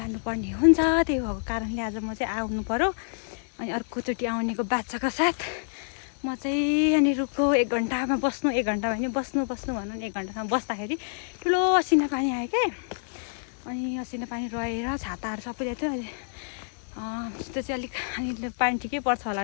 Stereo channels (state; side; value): silent; right; digital silence